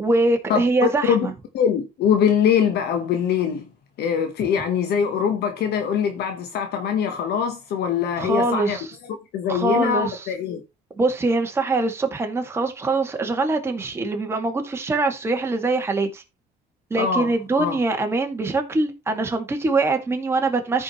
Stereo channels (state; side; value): normal; both; correlation 0.49